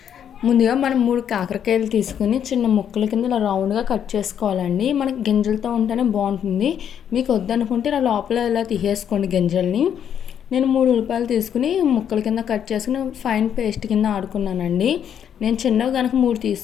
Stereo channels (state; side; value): quieter; right; 8.9 dB